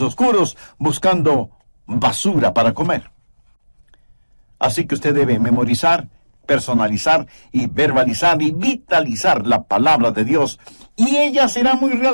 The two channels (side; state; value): both; inverted; correlation -1.00